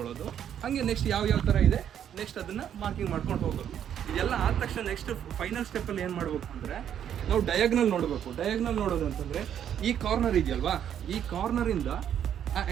ಹಾಗೆ ನೆಕ್ಸ್ಟ್ ಯಾವ ಥರ ಇದೆ ನೆಕ್ಸ್ಟ್ ಅದನ್ನು ಮಾರ್ಕಿಂಗ್ ಮಾಡ್ಕೊಂಡು ಹೋಗೋದು. ಇದೆಲ್ಲ ಆದ ತಕ್ಷಣ ನೆಕ್ಸ್ಟ್ ಫೈನಲ್ ಸ್ಟೆಪ್ಪಲ್ಲಿ ಏನು ಮಾಡಬೇಕು ಅಂದರೆ, ನಾವು ಡಯಾಗ್ನಲ್ ನೋಡಬೇಕು. ಡಯಾಗ್ನಲ್ ನೋಡೋದು ಅಂತಂದರೆ ಈ ಕಾರ್ನರ್ ಇದೆಯಲ್ವಾ, ಈ ಕಾರ್ನರಿಂದ ಆ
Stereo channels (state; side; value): quieter; left; 9.5 dB